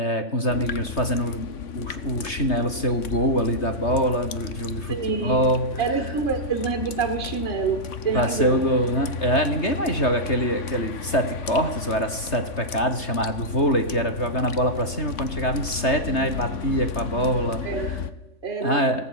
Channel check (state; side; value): late; right; 3.3 ms